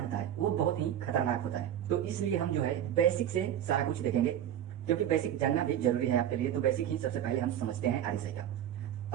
होता है वो बहुत ही खतरनाक होता है। तो इसलिए हम जो है बेसिक से सारा कुछ देखेंगे, क्योंकि बेसिक जानना भी जरूरी है आपके लिए। तो बेसिक ही सबसे पहले हम समझते हैं RSI का।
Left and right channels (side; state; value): left; quieter; 10.7 dB